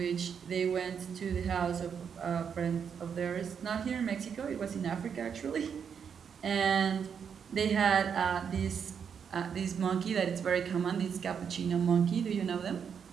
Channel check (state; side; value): quieter; left; 7.2 dB